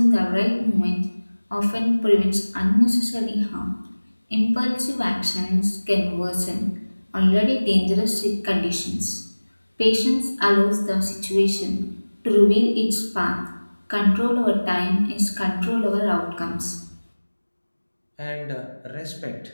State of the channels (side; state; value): both; inverted; correlation -1.00